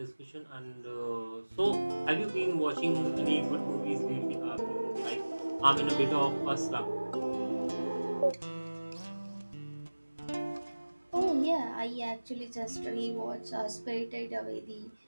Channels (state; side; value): inverted; both; correlation -1.00